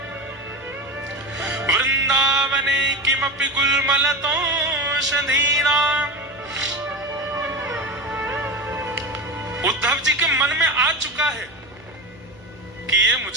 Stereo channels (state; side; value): noise; right; hum, 26 dB below the sound